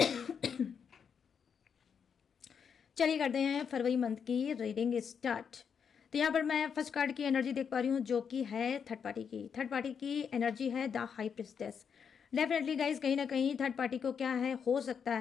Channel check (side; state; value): right; quieter; 6.9 dB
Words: चलिए करते हैं फरवरी मंथ की रीडिंग स्टार्ट। तो यहाँ पर मैं फर्स्ट कार्ड की एनर्जी देख पा रही हूँ, जो कि है थर्ड पार्टी की। थर्ड पार्टी की एनर्जी है the high priestess. Definitely guys, कहीं ना कहीं थर्ड पार्टी को क्या है, हो सकता